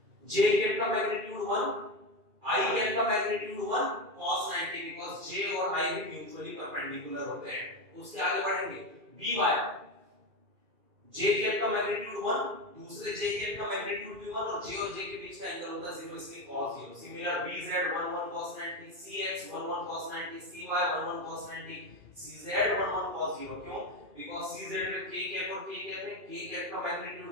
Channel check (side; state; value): left; late; 2.4 ms